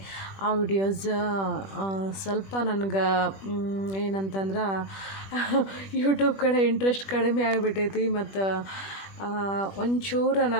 ಆ ವಿಡಿಯೋಸ್ ಸ್ವಲ್ಪ ನನಗೆ ಏನಂತಂದ್ರೆ ಯೂಟ್ಯೂಬ್ ಕಡೆ ಇಂಟ್ರೆಸ್ಟ್ ಕಡಿಮೆ ಆಗಿಬಿಟ್ಟೈತಿ. ಮತ್ತು ಒಂಚೂರು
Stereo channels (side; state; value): right; late; 21 ms